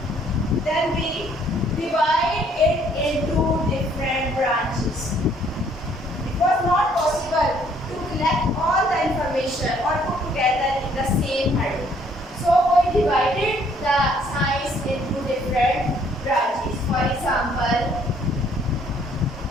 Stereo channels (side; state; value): both; normal; correlation 0.63